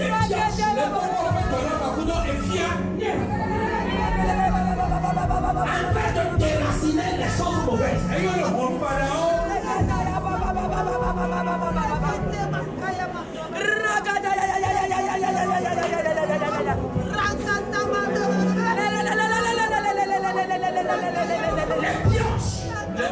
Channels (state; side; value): identical; both; correlation 1.00